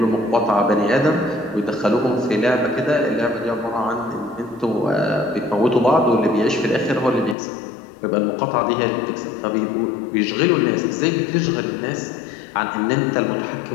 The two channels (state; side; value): drops out; right; at 7.4 s